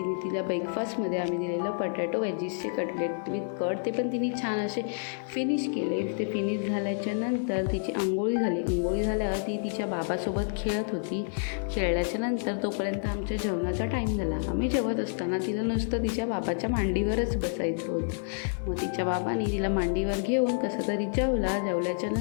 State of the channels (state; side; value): silent; right; digital silence